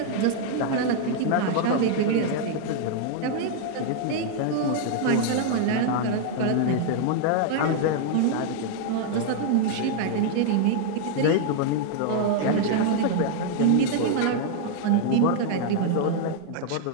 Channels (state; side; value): different; both; correlation 0.00